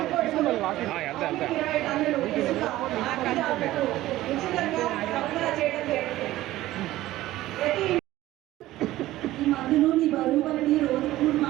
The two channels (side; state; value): left; quieter; 15.8 dB